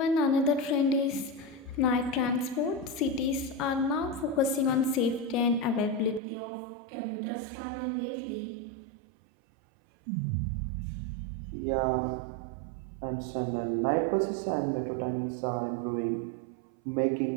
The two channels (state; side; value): drops out; left; at 6.2 s